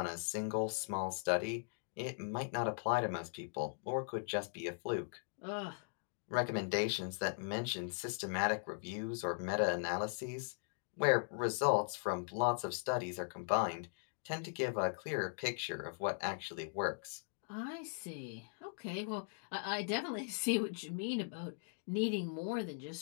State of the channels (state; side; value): silent; right; digital silence